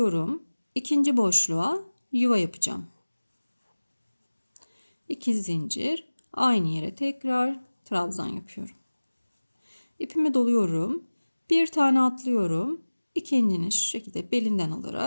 İkinci boşluğa yuva yapacağım. 2 zincir, aynı yere tekrar trabzan yapıyorum. İpimi doluyorum. Bir tane atlıyorum. İkincini şu şekilde belinden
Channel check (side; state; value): both; inverted; correlation -1.00